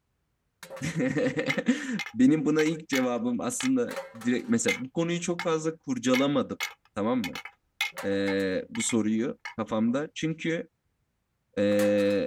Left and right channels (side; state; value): both; identical; correlation 1.00